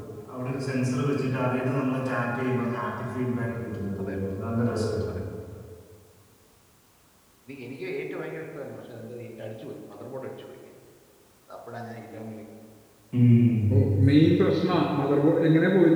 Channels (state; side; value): identical; both; correlation 1.00